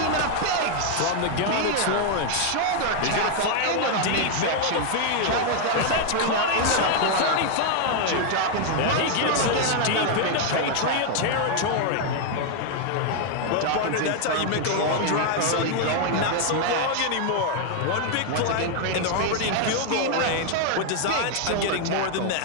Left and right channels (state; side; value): different; both; correlation 0.00